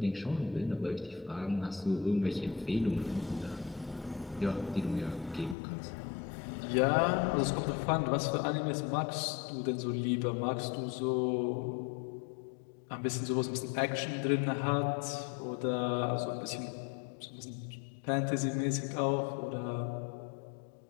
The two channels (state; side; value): drops out; right; at 5.6 s